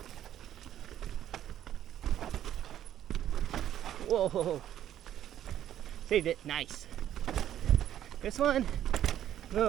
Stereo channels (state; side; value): quieter; left; 11.3 dB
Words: Whoa, saved it, nice. This one, a